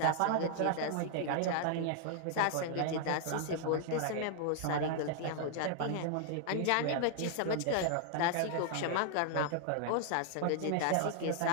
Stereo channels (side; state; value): both; different; correlation -0.01